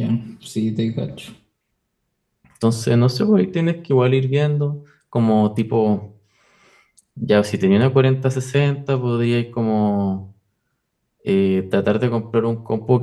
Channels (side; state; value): both; identical; correlation 1.00